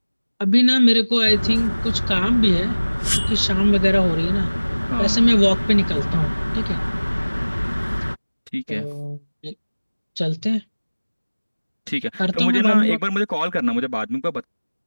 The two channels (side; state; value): both; inverted; correlation -1.00